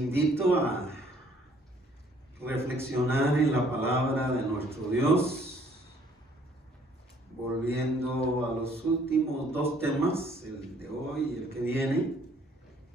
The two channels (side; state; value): both; normal; correlation 0.61